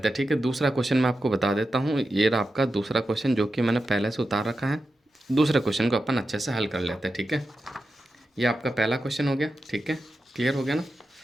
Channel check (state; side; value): normal; both; correlation 0.90